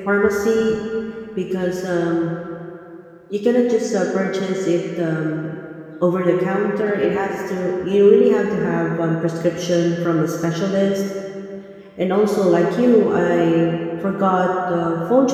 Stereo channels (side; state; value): both; identical; correlation 1.00